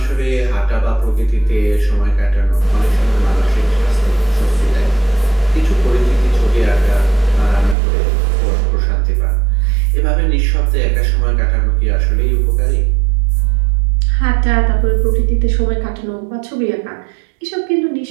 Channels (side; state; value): left; drops out; at 7.8 s